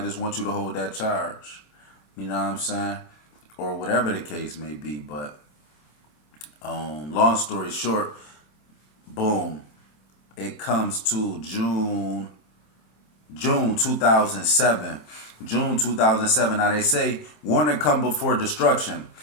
just want you to hold that charge. You know what I'm saying? Or whatever the case may be. But long story short, boom. It comes to June 2007. June 2007. Now they say warning come before destruction.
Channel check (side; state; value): right; late; 26 ms